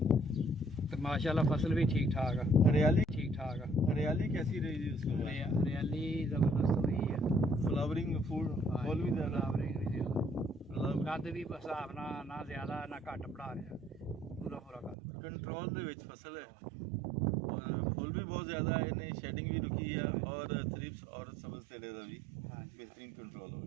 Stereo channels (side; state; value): left; drops out; at 15.0 s